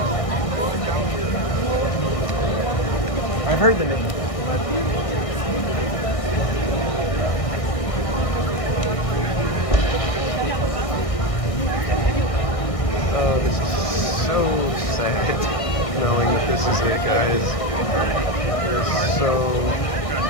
I've heard the name. Oh, this is so sad. Knowing that this is it, guys. It's so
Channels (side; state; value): right; late; 1.6 ms